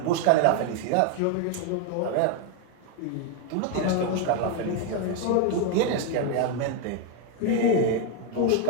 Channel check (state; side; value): different; both; correlation 0.01